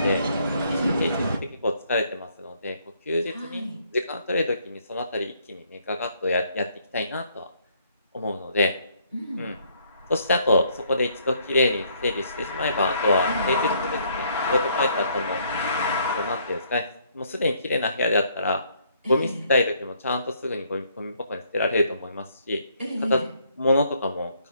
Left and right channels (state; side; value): inverted; both; correlation -0.67